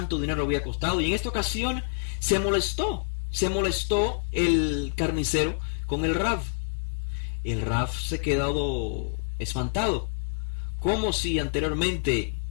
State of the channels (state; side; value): silent; right; 58 dB below the other